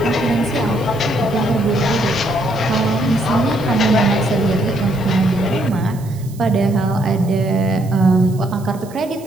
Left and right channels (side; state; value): right; noise; hiss, 23 dB below the sound